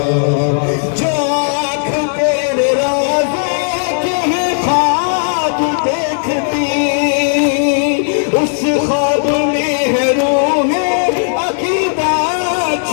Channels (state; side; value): silent; right; digital silence